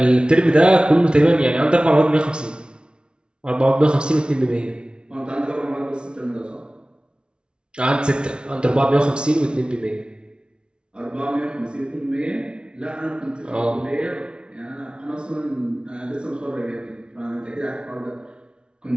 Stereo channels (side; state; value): left; late; 0.056 ms